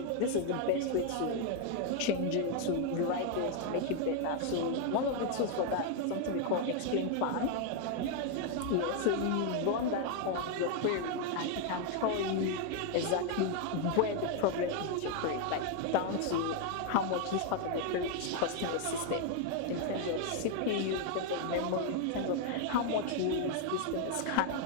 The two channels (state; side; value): different; both; correlation 0.00